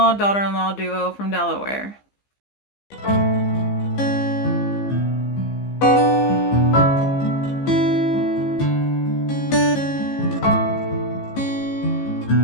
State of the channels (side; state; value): right; late; 15 ms